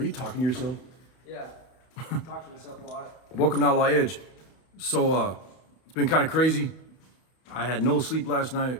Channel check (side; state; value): right; late; 31 ms